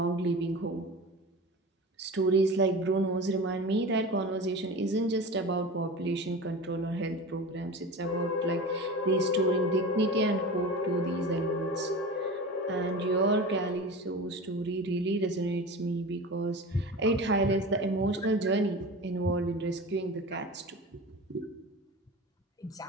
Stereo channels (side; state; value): both; normal; correlation 0.32